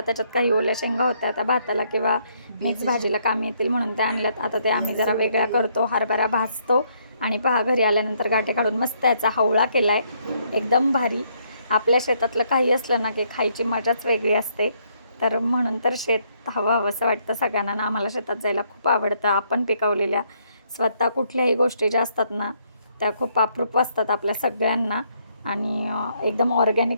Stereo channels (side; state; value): both; inverted; correlation -0.71